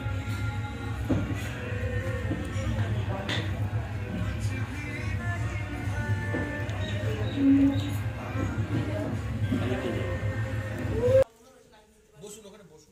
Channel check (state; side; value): identical; both; correlation 1.00